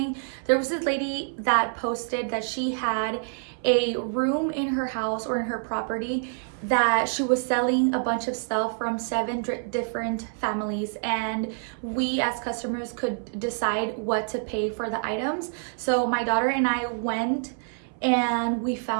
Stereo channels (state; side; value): silent; left; 59 dB below the other